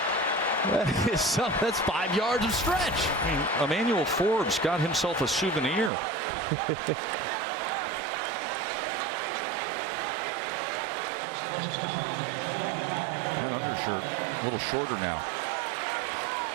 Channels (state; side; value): drops out; left; at 5.9 s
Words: That's 5 yards of stretch. I mean, Emmanuel Forbes got himself a souvenir. That undershirt a little shorter now.